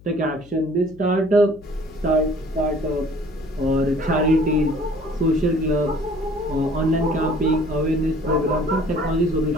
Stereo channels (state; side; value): noise; left; hum, 23 dB below the sound